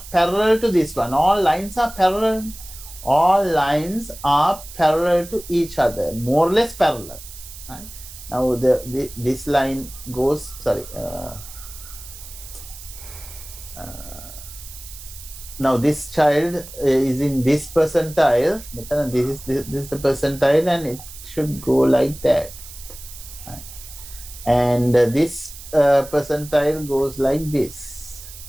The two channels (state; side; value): noise; right; hiss, 15 dB below the sound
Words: parallel to this one. All lines are parallel. All lines are parallel to each other, more or less parallel. Right? Now this line goes. Sorry. Now this child is in this percentile. This is the percentile, and it should go like that. Right? And this percentile goes like this.